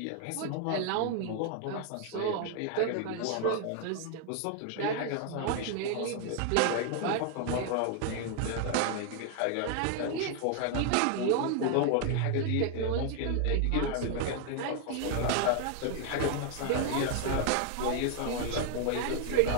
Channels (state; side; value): different; both; correlation 0.00